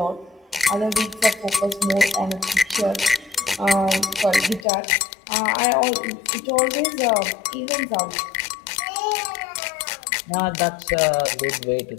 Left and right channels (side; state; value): right; drops out; at 4.7 s